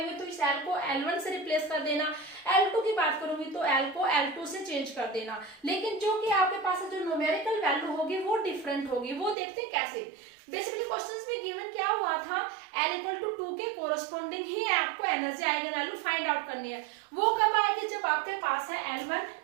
तो इस L को L1 से रिप्लेस कर देना, L2 की बात करूंगी तो L को L2 से चेंज कर देना। लेकिन जो कि आपके पास जो न्यूमेरिकल वैल्यू होगी वो डिफरेंट होगी, वो देखते हैं कैसे। बेसिकली क्वेश्चंस में गिवन क्या हुआ था, L इक्वल टू 2 के कोरस्पोंडिंग ही आपको energy eigen value find out करनी है। वो कब आएगी, जब आपके पास है L1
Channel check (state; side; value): drops out; left; at 9.3 s